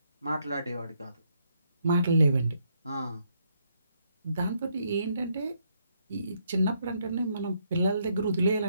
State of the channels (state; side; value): inverted; both; correlation -0.74